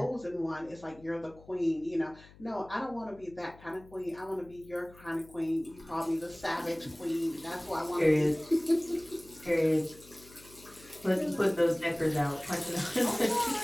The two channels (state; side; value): noise; left; hum, 23 dB below the sound